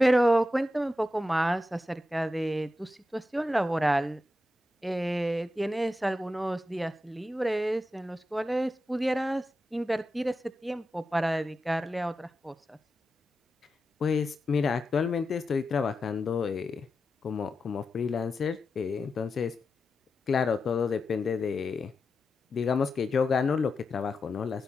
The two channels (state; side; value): normal; both; correlation 0.90